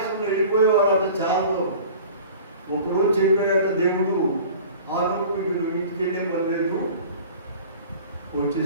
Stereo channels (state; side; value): inverted; both; correlation -0.43